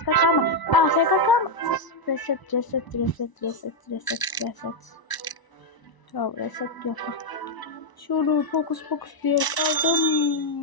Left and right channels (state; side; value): late; right; 1.0 ms